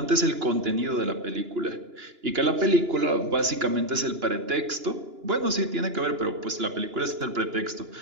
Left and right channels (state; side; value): late; left; 2.9 ms